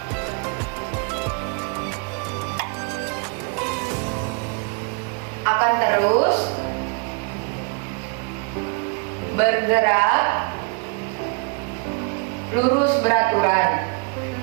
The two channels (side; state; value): left; quieter; 36.5 dB